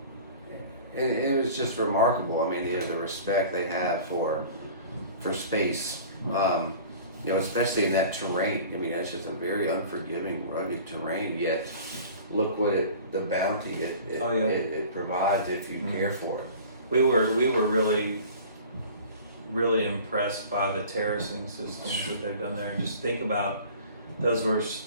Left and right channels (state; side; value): inverted; both; correlation -0.43